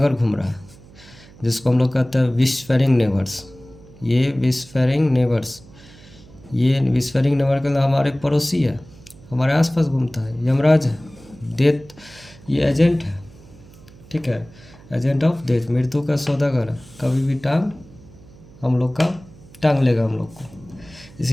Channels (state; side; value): noise; right; hum, 22 dB below the sound